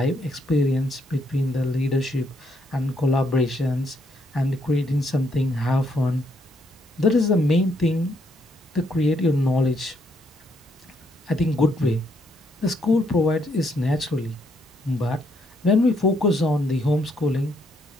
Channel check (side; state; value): both; normal; correlation 0.73